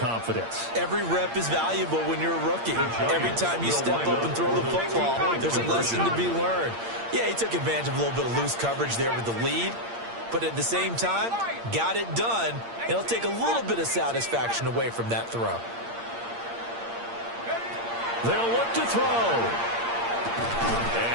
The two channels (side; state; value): left; late; 8.7 ms